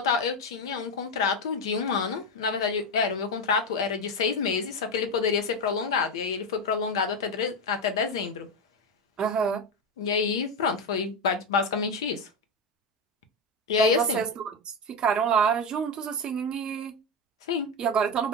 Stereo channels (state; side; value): normal; both; correlation 0.11